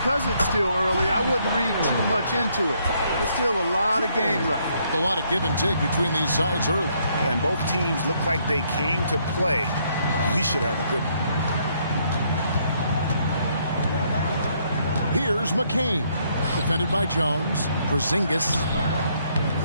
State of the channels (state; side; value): inverted; both; correlation -0.70